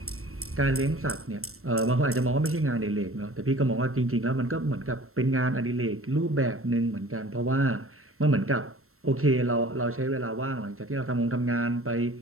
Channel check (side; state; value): left; late; 0.62 ms